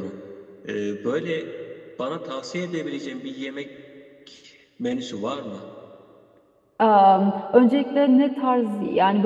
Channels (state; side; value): identical; both; correlation 1.00